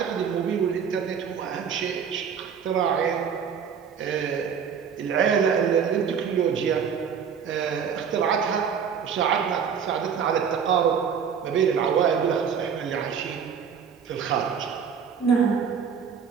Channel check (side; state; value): left; quieter; 7.1 dB